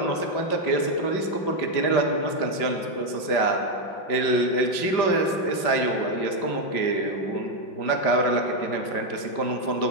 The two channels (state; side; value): late; right; 5.1 ms